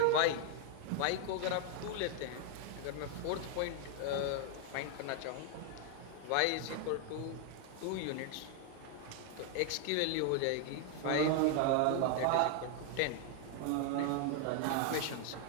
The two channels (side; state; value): both; different; correlation 0.00